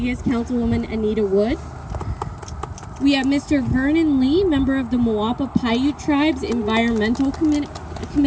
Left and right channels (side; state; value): both; identical; correlation 1.00